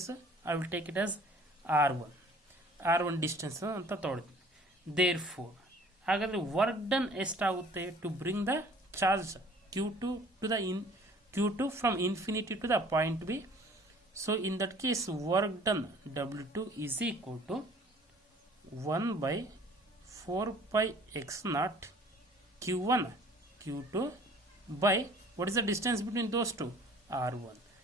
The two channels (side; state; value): both; normal; correlation 0.51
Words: I will take it as r1 distance ಅಂತ ತೊಗೊಳ್ತೀನಿ. Therefore ಹಾಗಾದರೆ work done ಎಷ್ಟಾಗುತ್ತೆ to bring the charge q2 to the q2 from infinity to the point B. So in that case work done W2 is equal to 1/4πx0 q1 q2 by what is the distance between those two? r1.